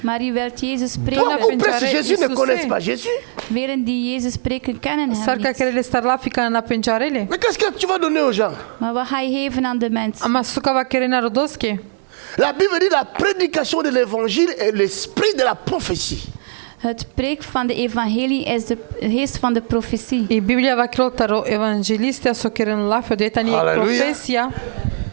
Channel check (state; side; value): silent; left; 67 dB below the other